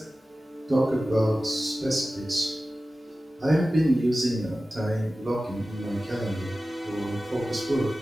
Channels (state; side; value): normal; both; correlation 0.95